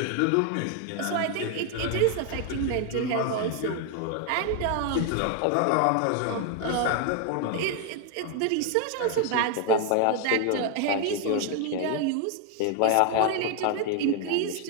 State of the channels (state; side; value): different; both; correlation 0.01